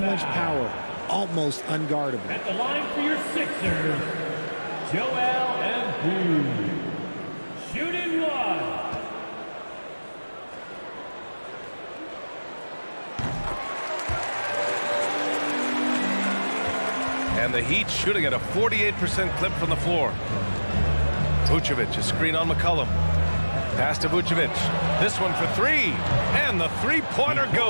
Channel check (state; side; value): inverted; both; correlation -1.00